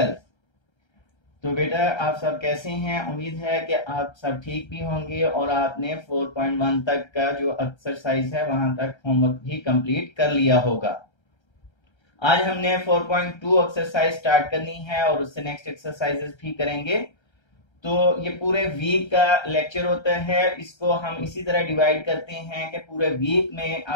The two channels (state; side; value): late; right; 1.3 ms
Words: तो बेटा आप सब कैसे हैं? उम्मीद है कि आप सब ठीक भी होंगे और आपने 4.1 तक का जो एक्सरसाइज है वहां तक होमवर्क भी कंप्लीट कर लिया होगा। आज हमने 4.2 एक्सरसाइज स्टार्ट करनी है और उससे नेक्स्ट एक्सरसाइजेस भी करेंगे। तो ये पूरे वीक का लेक्चर होता है, इसको हम इसी तरह डिवाइड करते हैं कि पूरे वीक में